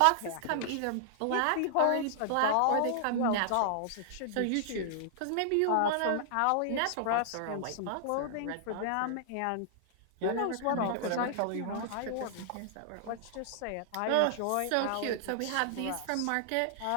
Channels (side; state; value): both; different; correlation -0.01